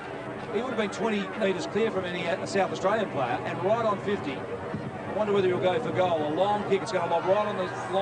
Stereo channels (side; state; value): both; identical; correlation 1.00